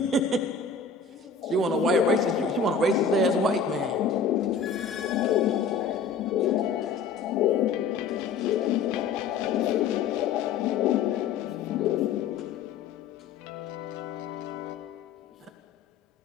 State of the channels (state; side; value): quieter; right; 5.4 dB